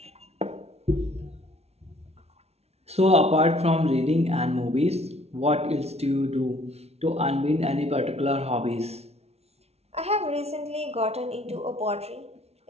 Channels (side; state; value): left; late; 0.31 ms